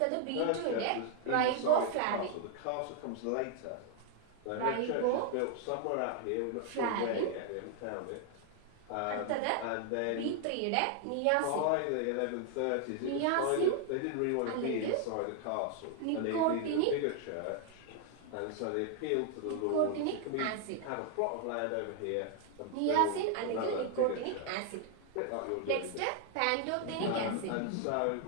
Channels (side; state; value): both; different; correlation 0.00